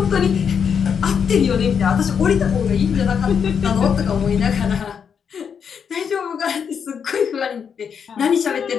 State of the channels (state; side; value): quieter; right; 7.1 dB